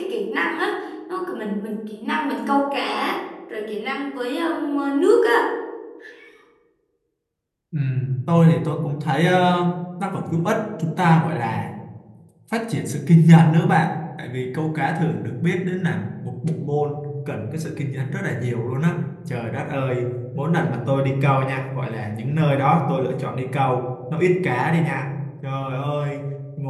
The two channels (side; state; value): both; identical; correlation 1.00